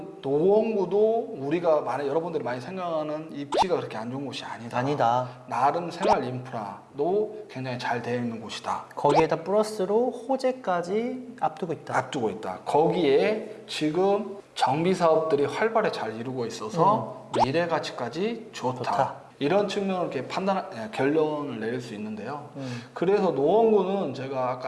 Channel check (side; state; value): both; identical; correlation 1.00